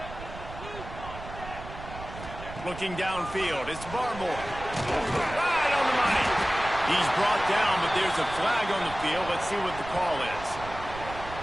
Looking downfield, it's Barmore. Right on the money. He's brought down, but there's a flag on the field. Let's see what the call is.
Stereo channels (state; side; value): noise; right; rumble, 12 dB below the sound